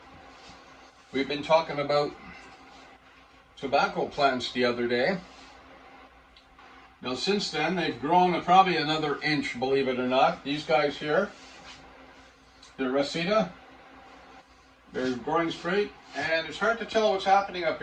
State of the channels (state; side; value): identical; both; correlation 1.00